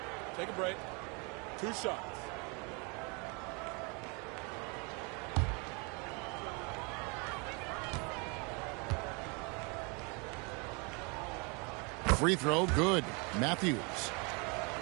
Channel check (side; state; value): left; quieter; 31.8 dB